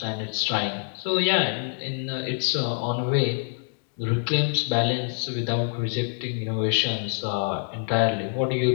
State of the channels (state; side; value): silent; right; digital silence